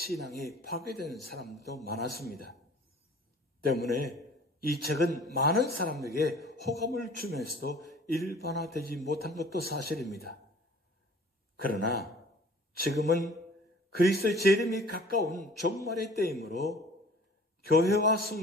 파괴된 사람도 많았습니다. 때문에 이 책은 많은 사람에게 호감을 주면서도 일반화되지 못한 것도 사실입니다. 그러나 지금은 그리스도의 재림이 가까운 종말의 때이므로 교회와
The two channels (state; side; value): normal; both; correlation 0.49